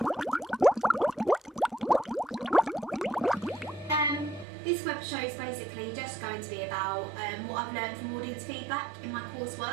This web show is basically just going to be about what I've learned from audience feedback in my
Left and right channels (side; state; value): left; drops out; at 4.5 s